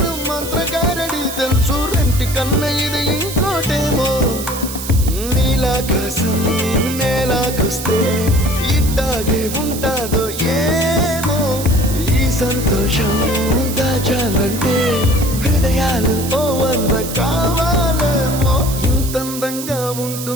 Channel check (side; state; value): right; noise; hiss, 9 dB below the sound